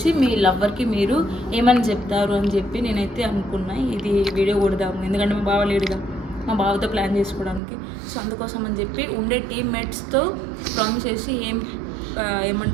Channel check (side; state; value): left; drops out; at 7.6 s